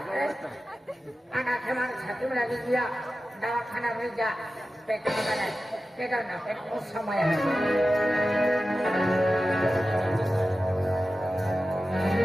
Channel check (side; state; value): both; normal; correlation 0.94